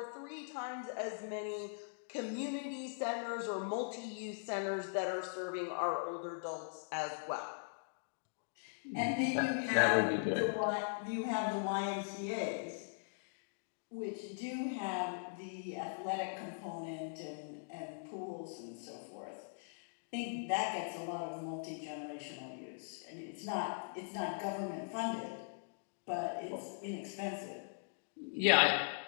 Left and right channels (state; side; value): silent; right; digital silence